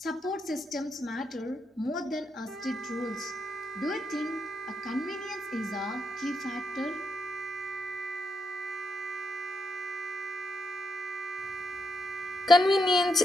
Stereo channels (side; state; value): both; normal; correlation 0.81